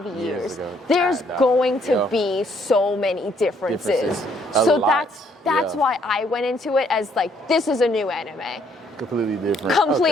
years. There's going to be so many differences. So that's why I went into it as like, this is a new anime. Completely different.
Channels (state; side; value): normal; both; correlation 0.68